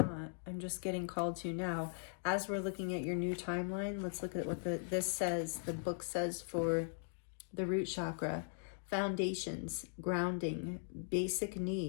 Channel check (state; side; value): silent; right; digital silence